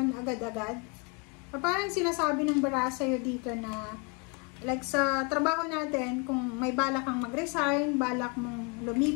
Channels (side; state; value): right; quieter; 32.9 dB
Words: agad-agad. Parang sinasabi ng baraha sa'yo dito na like sa trabaho natin, kung may balak kang mag-resign, balak mong